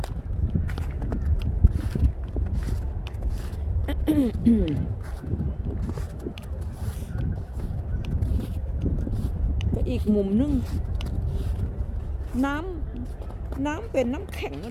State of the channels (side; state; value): both; identical; correlation 1.00